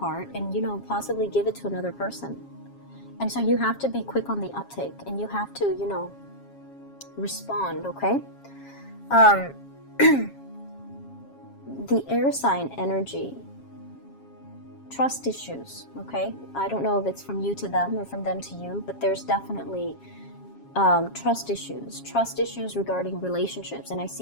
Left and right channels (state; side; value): late; right; 7.3 ms